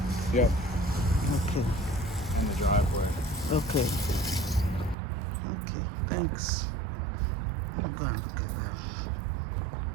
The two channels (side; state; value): left; drops out; at 5.0 s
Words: Yep. Okay. And the driveway. Okay. Okay, thanks. Let me go and look at that.